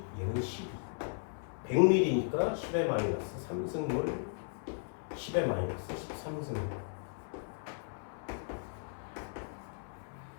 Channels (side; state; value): right; silent; 54 dB below the other